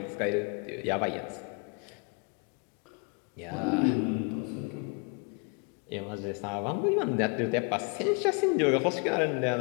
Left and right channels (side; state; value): right; quieter; 34.3 dB